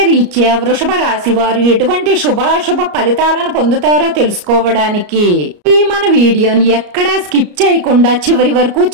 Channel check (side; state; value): left; late; 34 ms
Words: రీత్యా వృషభ రాశి వారు ఎటువంటి శుభాశుభ ఫలితాలను పొందుతారో తెలుసుకోవడానికి ఈ మన వీడియోని ఎక్కడా స్కిప్ చేయకుండా చివరి వరకు